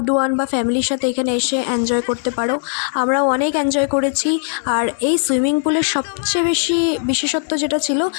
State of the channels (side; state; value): right; silent; 58 dB below the other